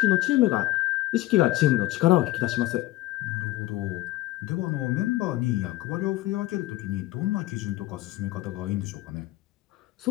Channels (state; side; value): quieter; right; 17.2 dB